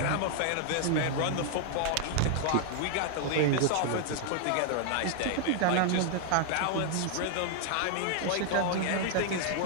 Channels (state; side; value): different; both; correlation 0.00